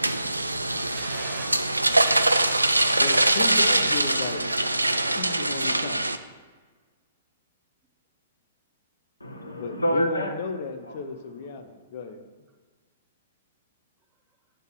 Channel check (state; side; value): inverted; both; correlation -0.88